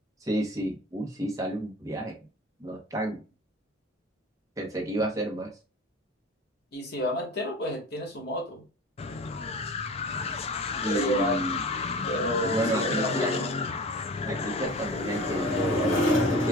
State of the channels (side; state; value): both; normal; correlation 0.37